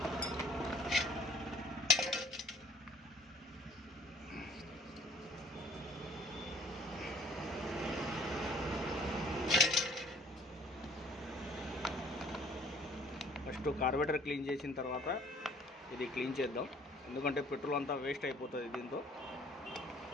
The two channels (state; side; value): normal; both; correlation 0.56